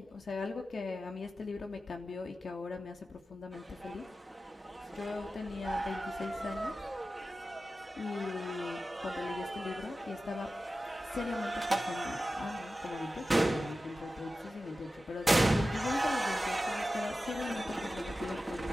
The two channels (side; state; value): both; normal; correlation 0.94